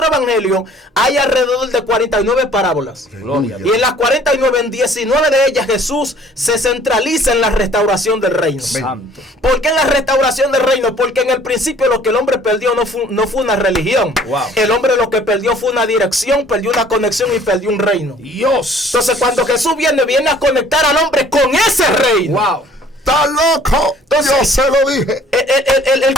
evangelios hay alrededor de 49 parábolas. Y en las 49, en 19 de ellas Jesús se centraliza en la restauración del reino. Santo. ¿Por qué en la restauración del reino? Porque en el principio lo que el hombre perdió no fue una religión. Wow. El hombre lo que perdió fue una dirección, perdió una conexión y perdió un reino. Dios. Entonces cuando Jesús viene a conectar al hombre con ese reino. Wow. ¡Está loco! Entonces, yo se lo dije. El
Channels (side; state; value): both; normal; correlation 0.54